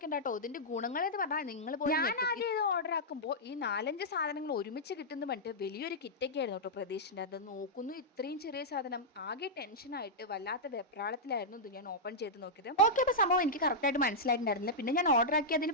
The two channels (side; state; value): both; normal; correlation -0.09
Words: കേട്ടോ, ഇതിൻ്റെ ഗുണങ്ങൾ എന്ന് പറഞ്ഞാൽ നിങ്ങൾ പോയി ഞാൻ ആദ്യം ഇത് ഓർഡർ ആക്കുമ്പോൾ ഈ 4-5 സാധനങ്ങൾ ഒരുമിച്ച് കിട്ടുന്ന പറഞ്ഞിട്ട് വലിയൊരു കിറ്റൊക്കെ ആയിരുന്നു കേട്ടോ പ്രതീക്ഷിച്ചിട്ട്. അത് നോക്കുന്നു, ഇത്രയും ചെറിയ സാധനം. ആകെ ടെൻഷനായിട്ട് വല്ലാത്ത വെപ്രാളത്തിലായിരുന്നു ഇത് ഞാൻ ഓപ്പൺ ചെയ്ത് നോക്കിയത്. നോക്കിയപ്പോൾ സംഭവം എനിക്ക് കറക്റ്റായിട്ട് മനസ്സിലായിട്ടുണ്ടായിരുന്നില്ല. പിന്നെ ഞാൻ ഓർഡർ ആക്കി അതിൽ